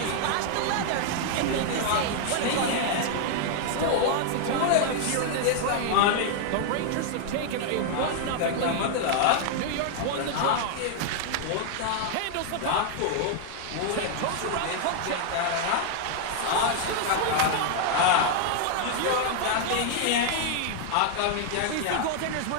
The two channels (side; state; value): both; different; correlation 0.00